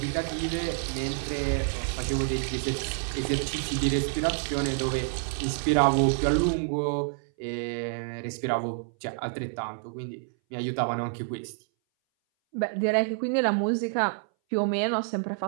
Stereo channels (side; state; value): left; silent; 58 dB below the other